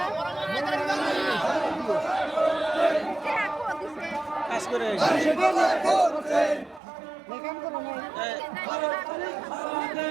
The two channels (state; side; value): drops out; left; at 6.8 s